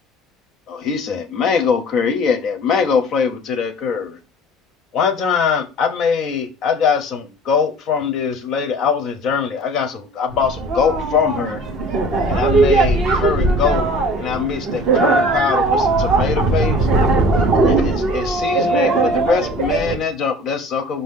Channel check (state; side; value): normal; both; correlation 0.45